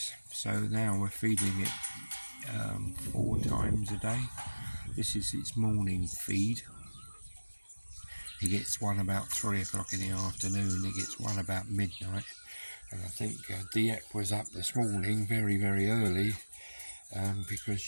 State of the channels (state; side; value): inverted; both; correlation -1.00